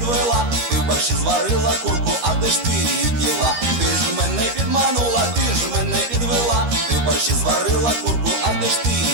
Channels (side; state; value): left; late; 13 ms